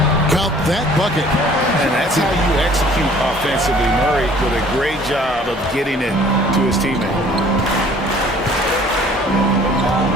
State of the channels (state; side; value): normal; both; correlation 0.54